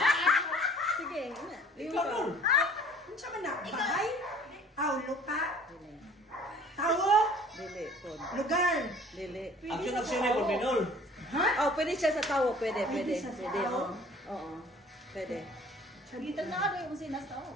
Sige, ina. Ikaw nun. Sama na. Bahay. Aw, lupa. Tawo. Dili, kon. Lugar. Dili. Action na Minol. Ha? Oh, pwede siya sa tawo. Pwede. Pwede siya sa Pwede, tawo? Oo. Pwede. Sagitan na ano yung sinas tawo?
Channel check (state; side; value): normal; both; correlation 0.51